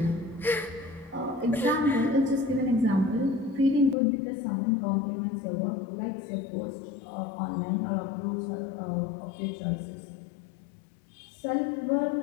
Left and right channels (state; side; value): drops out; right; at 4.0 s